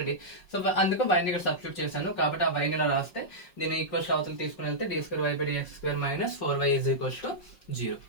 సో అందుకు y ని ఇక్కడ సబ్స్టిట్యూట్ చేశాను, కాబట్టి ఆ y ని ఇలా రాస్తే దీన్ని ఈక్వల్స్ అవతల తీసుకుని వెళ్తే d square y by dx square minus 4y is equals to 0.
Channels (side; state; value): right; late; 5.5 ms